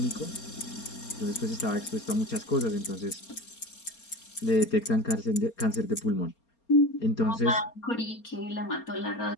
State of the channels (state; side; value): late; right; 4.3 ms